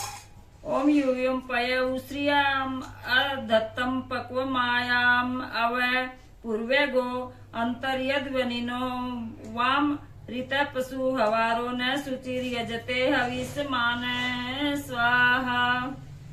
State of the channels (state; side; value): identical; both; correlation 1.00